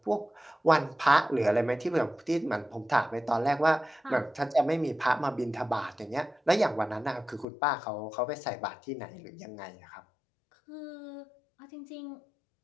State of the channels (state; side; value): drops out; right; at 7.5 s